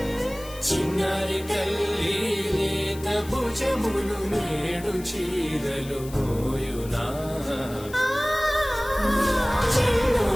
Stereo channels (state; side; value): noise; left; hiss, 17 dB below the sound